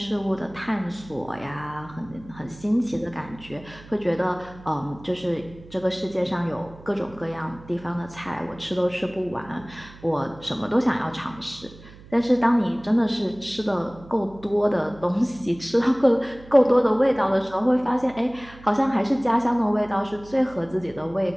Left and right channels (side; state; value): right; noise; hum, 20 dB below the sound